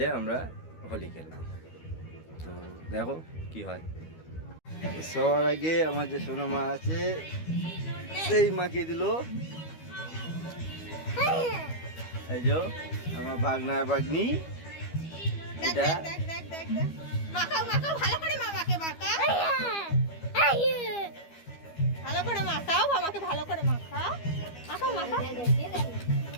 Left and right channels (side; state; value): right; late; 12 ms